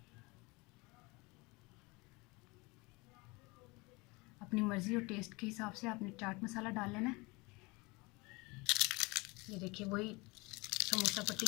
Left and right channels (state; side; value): quieter; right; 25.6 dB